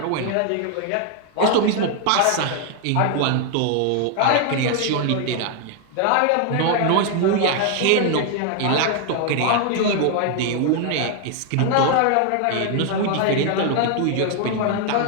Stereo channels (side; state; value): both; different; correlation 0.00